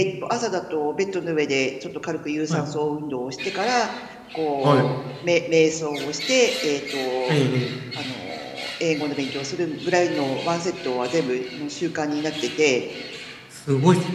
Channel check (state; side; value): identical; both; correlation 1.00